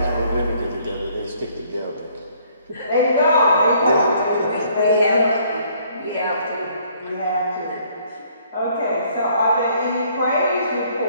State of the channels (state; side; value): inverted; both; correlation -0.63